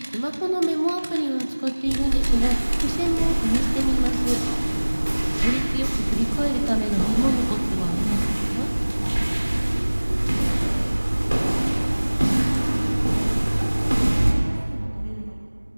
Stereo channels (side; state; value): both; inverted; correlation -1.00